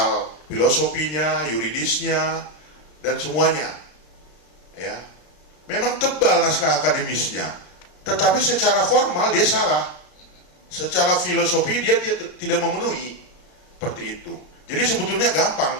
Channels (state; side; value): late; right; 33 ms